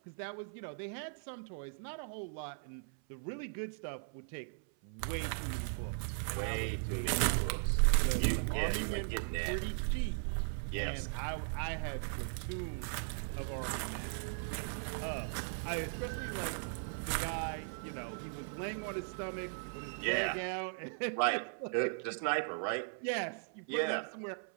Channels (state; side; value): silent; left; 52 dB below the other